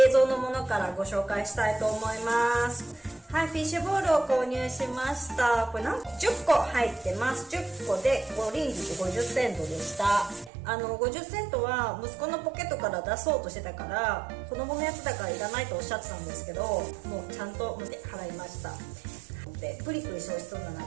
蔵のものからご紹介したいと思います。はい、フィッシュボールを購入しました。これ10個入ってます。10個で5リンギット50セントでした。50セントは息子のポケットから出そうとしてたから、子供のやつだからいらないとおっしゃってたんですけど、もうちゃんと払いました。でプリプリして美味しそうだなと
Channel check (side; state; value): left; drops out; at 10.5 s